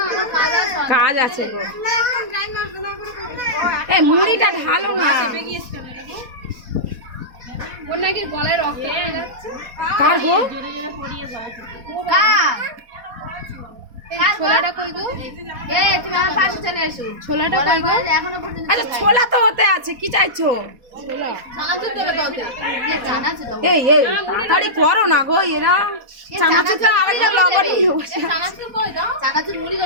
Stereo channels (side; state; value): left; late; 4.2 ms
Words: আমার কাজ আছে। কাজ আছে গো। এই মুড়িটা ঢালো না। চেপে গিয়েছে কেন দেখো? ওর নাকি গলায় রক্ত বেরিয়ে যাচ্ছে। কার গো? জোরে জোরে পড়িয়ে যাচ্ছে। ছোলাটা কই গো? এ তুমি আমার পাশে চলে এসো। ছোলাটা কই গো? এখনো পর্যন্ত আচ্ছা ছোলা তো হতে আছে, কি চাইছো? চানাচুর দেবে তো ওতে। এ চানাচুর দাও। এই তাড়াতাড়ি করো না গো, এরা চানাচুরটা আরেকটা লবণ নিয়ে বসে। চানাচুর কই দাও? চানাচুর মুড়ি